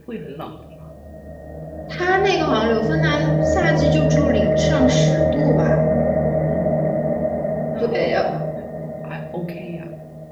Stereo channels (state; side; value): identical; both; correlation 1.00